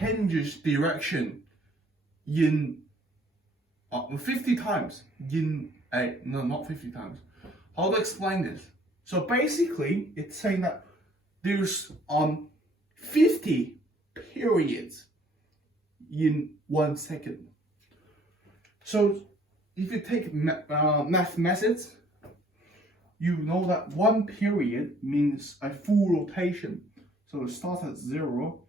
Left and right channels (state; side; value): normal; both; correlation 0.60